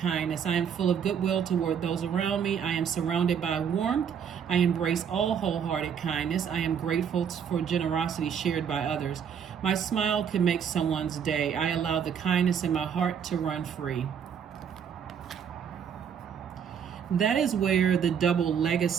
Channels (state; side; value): quieter; left; 7.7 dB